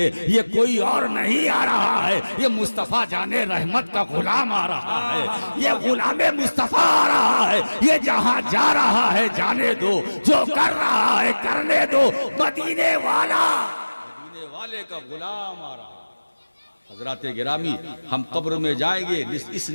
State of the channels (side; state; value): both; inverted; correlation -1.00